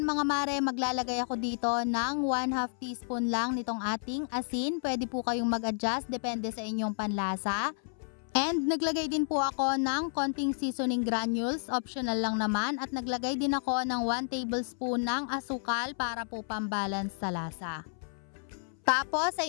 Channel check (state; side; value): silent; right; 57 dB below the other